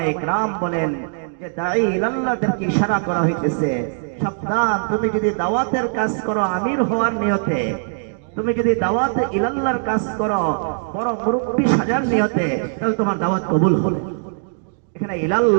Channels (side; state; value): left; silent; digital silence